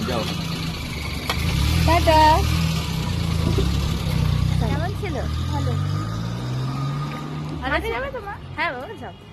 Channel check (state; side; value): identical; both; correlation 1.00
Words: যাও। টাটা। কেমন ছিল? ভালো। ভালো যাবে তোমার? হ্যাঁ বাবা যাও।